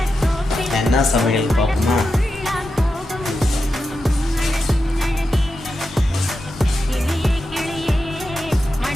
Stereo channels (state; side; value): normal; both; correlation 0.89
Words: என்ன சமையல் பார்ப்போமா?